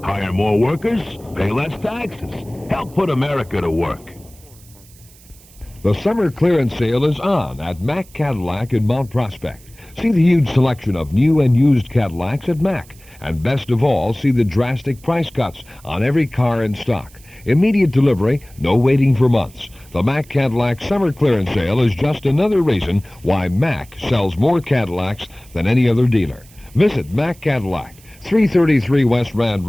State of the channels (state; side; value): noise; right; hiss, 25 dB below the sound